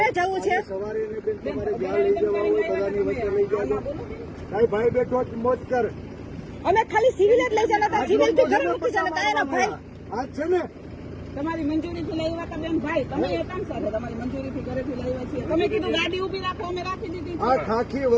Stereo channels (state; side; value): identical; both; correlation 1.00